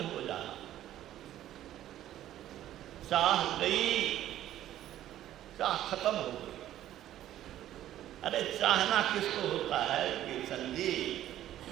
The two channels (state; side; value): quieter; left; 12.7 dB